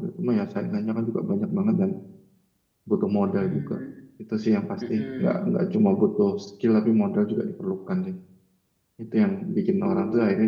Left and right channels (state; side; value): identical; both; correlation 1.00